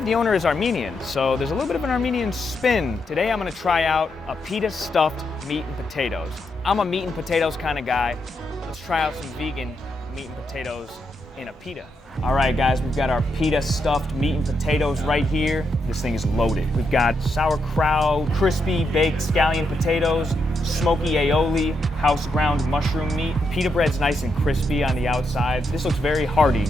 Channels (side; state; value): both; normal; correlation 0.81